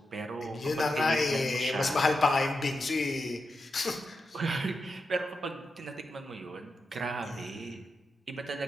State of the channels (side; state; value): both; normal; correlation 0.88